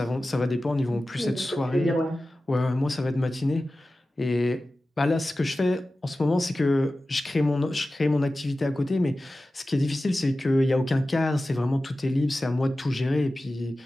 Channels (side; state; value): both; normal; correlation 0.95